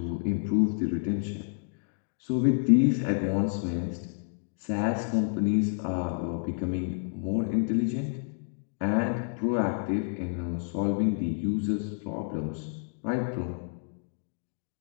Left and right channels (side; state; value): right; silent; digital silence